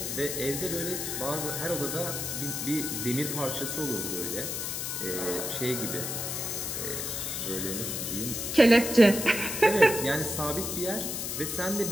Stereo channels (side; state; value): left; noise; hiss, 3 dB below the sound